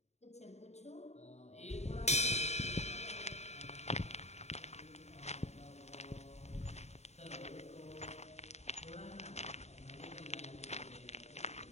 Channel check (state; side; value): late; right; 0.32 ms